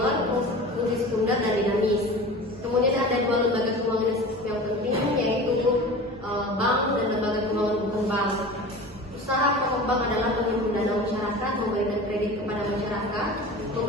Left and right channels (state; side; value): normal; both; correlation 0.36